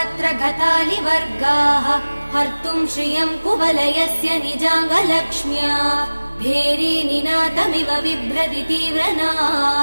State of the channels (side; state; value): both; inverted; correlation -1.00